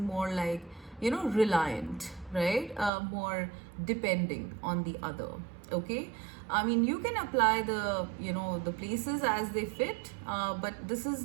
like reliant, right? More depending on the other. Okay, I mean, you can apply the the places as they fit, but this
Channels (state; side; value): drops out; left; at 2.9 s